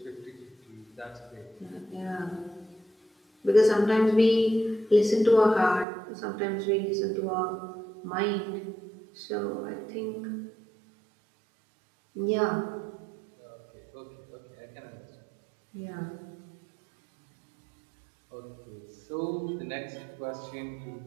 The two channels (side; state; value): left; drops out; at 5.9 s